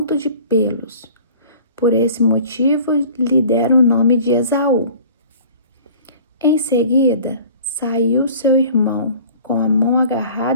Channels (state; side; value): inverted; both; correlation -0.46